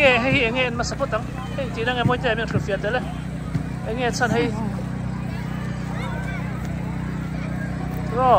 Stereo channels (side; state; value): both; identical; correlation 1.00